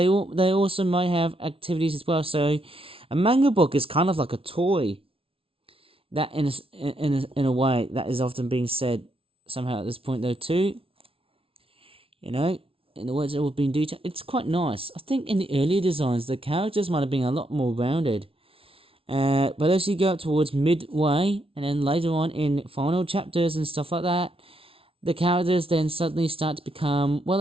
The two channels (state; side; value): late; left; 0.26 ms